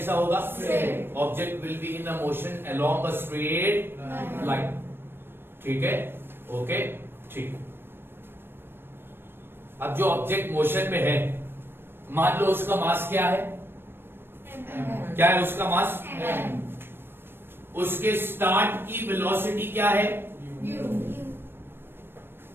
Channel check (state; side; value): late; left; 0.11 ms